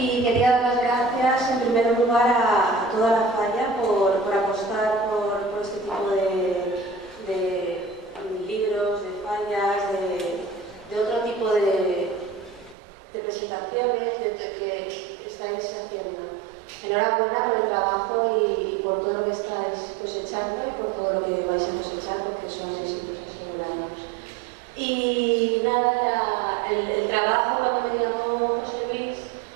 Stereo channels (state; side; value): drops out; left; at 12.8 s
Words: quería dar las gracias en primer lugar a toda la Falla por apostar por este tipo de libros, de fallas, de otro tipo de presentaciones que estáis haciendo. Enhorabuena por el trabajo y por todo lo que estáis cosechando y por todo lo que vais a cosechar, porque son éxitos asegurados. Y nada, el trabajo cuando me llamó José Luis